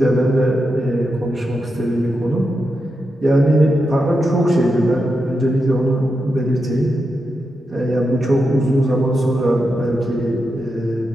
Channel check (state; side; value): normal; both; correlation 0.87